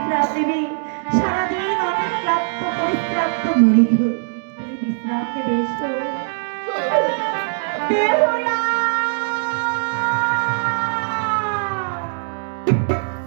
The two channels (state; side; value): silent; left; digital silence